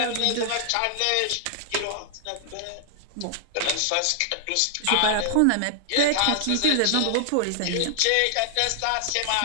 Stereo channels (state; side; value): different; both; correlation -0.01